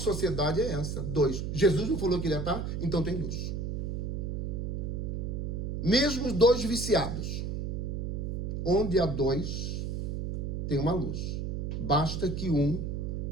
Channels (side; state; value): right; noise; hum, 3 dB below the sound